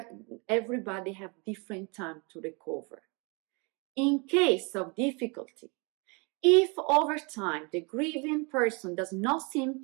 Everybody have different time to recover. In case of difficulty, if over time the grieving person does not seem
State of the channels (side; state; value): left; quieter; 31.2 dB